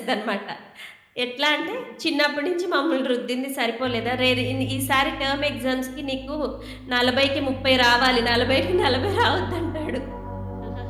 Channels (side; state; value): both; identical; correlation 1.00